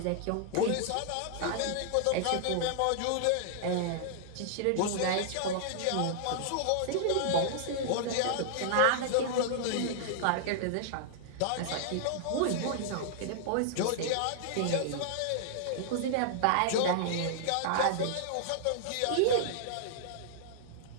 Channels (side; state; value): both; different; correlation -0.01